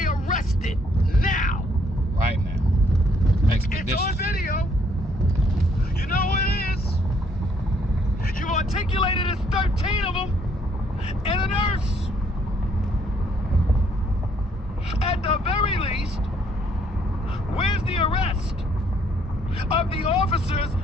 arrested now? Right now. It's on video. You know what it is. You've articulated it's 13 of them and a nurse. At the very least, where's the arrest of the officers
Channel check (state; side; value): normal; both; correlation 0.67